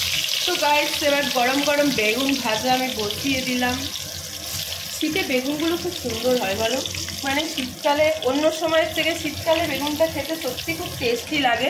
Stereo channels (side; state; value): both; identical; correlation 1.00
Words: তো গাইস এবার গরম গরম বেগুন ভাজা আমি বসিয়ে দিলাম। শীতে বেগুনগুলো খুব সুন্দর হয় বলো, মানে শীতকালে অন্য সময়ের থেকে শীতকালে বেগুনটা খেতে সত্যি খুব টেস্টি লাগে।